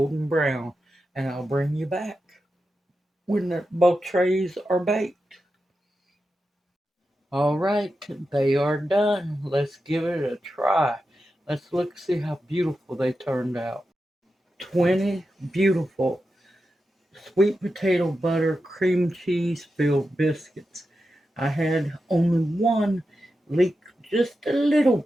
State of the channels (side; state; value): both; normal; correlation 0.90